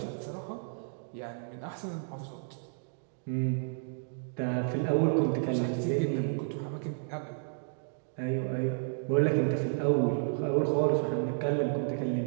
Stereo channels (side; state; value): left; silent; digital silence